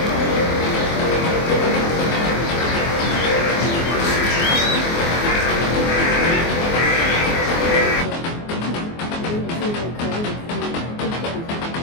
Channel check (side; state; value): right; late; 24 ms